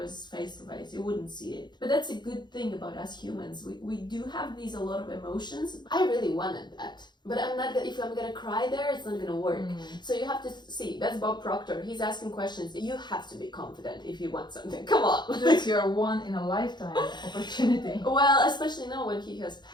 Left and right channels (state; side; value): late; right; 0.21 ms